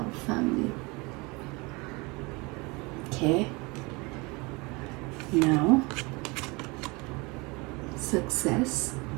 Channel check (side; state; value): left; quieter; 26.3 dB